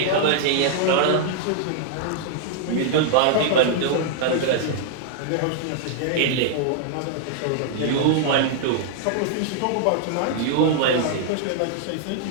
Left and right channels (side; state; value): both; different; correlation -0.01